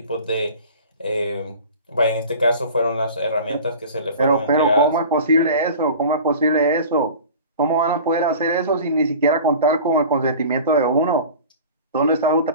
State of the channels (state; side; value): inverted; both; correlation -0.39